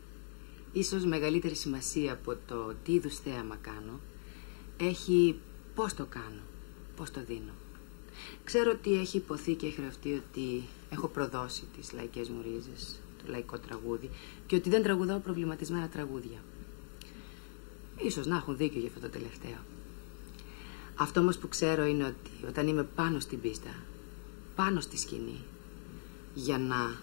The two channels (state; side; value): silent; right; digital silence